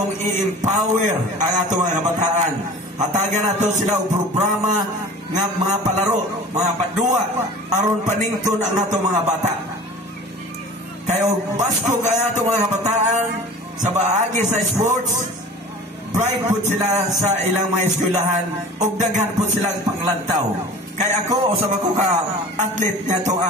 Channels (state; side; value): normal; both; correlation 0.41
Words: i-empower ang atong mga kabataan. Hatagan nato sila og programa nga mga palaro, mga padua, aron panington ang atong mga bata. Kaya og baskog ang atong mga kabataan sa baagi sa sports, bright po sila sa ilang mga eskwelahan ug daghan po silang panglantaw. Kaya ako, usab ako ka athlete nga itong